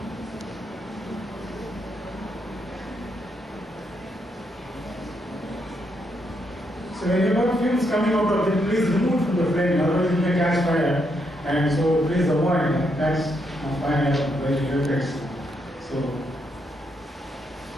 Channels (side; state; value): both; normal; correlation 0.78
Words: So when you got fumes coming out of it, please remove from the flame, otherwise it may catch fire. And so please avoid catch fire by your effects. So